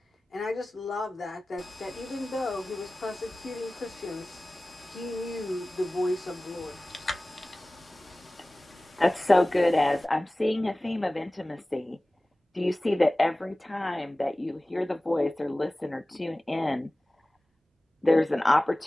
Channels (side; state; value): both; normal; correlation 0.98